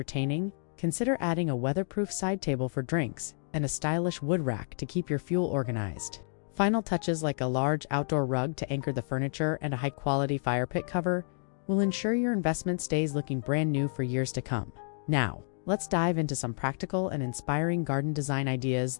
consider adding a weatherproof side table for drinks and a stylish wood rack to keep your fuel organized. Final touches like a large outdoor rug to anchor the furniture and a high-quality fire pit cover will ensure your investment stays looking brand new for years to come. Now, let's dive into some practical and inspiring garden design ideas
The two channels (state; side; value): silent; right; digital silence